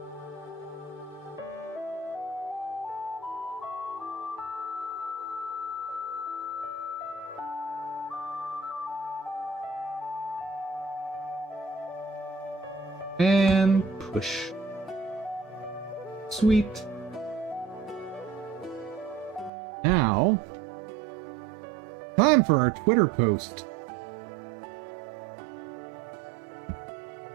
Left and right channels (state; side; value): drops out; left; at 19.5 s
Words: And push. Sweet. Now, time for our Twitter post.